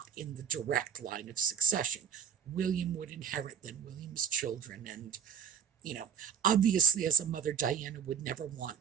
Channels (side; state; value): left; quieter; 7.8 dB